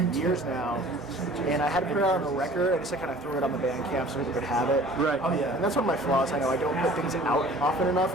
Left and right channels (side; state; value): both; normal; correlation 0.48